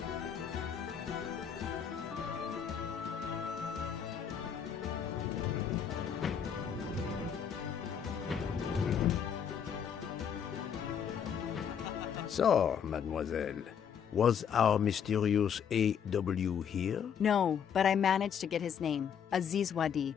So, mademoiselle, was our mysterious A.W. here? No, but I managed to get his name, Aziz Wadi,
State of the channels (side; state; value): right; quieter; 7.8 dB